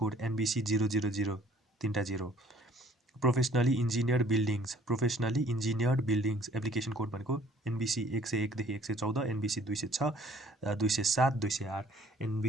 NBC 000 0. Professionally engineered buildings application code भनेको NBC 101 देखि 114, NBC 206, 207, 208,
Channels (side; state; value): both; normal; correlation 0.56